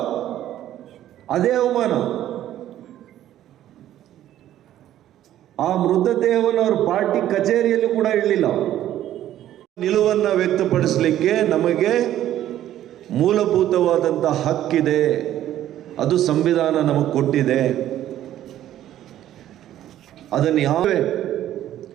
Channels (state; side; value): quieter; left; 12.4 dB